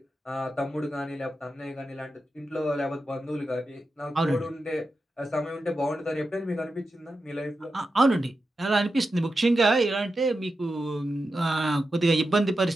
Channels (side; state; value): both; normal; correlation 0.90